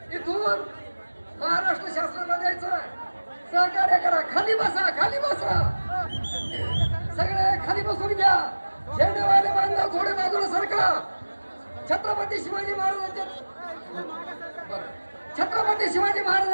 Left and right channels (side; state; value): both; inverted; correlation -1.00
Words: इथून महाराष्ट्र शासनाला द्यायचा आहे. सहकार्य करा. खाली बसा, खाली बसा, सगळे खाली बसून घ्या. झेंडेवाले बांधव थोडे बाजूला सरका. छत्रपती शिवाजी